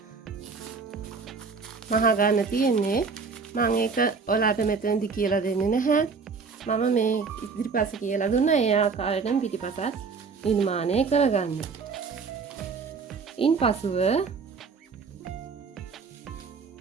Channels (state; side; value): quieter; left; 5.0 dB